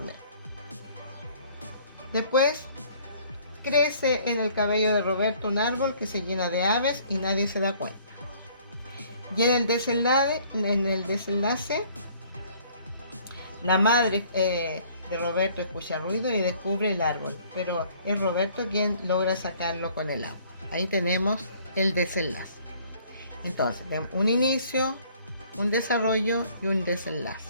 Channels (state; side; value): inverted; both; correlation -0.58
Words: Después crece en el cabello de Roberto un árbol que se llena de aves y nadie se da cuenta. Y en el desenlace, la madre de Roberto escucha ruido y descubre el árbol, pero es Roberto quien logra sacarlo con el agua. Ahí tenemos el desenlace. Entonces, un inicio, un desarrollo y un desenlace.